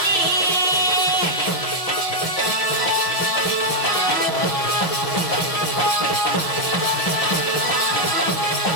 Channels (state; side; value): late; right; 5.6 ms